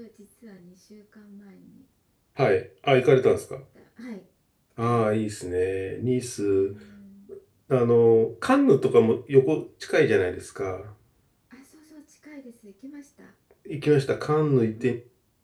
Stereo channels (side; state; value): both; identical; correlation 1.00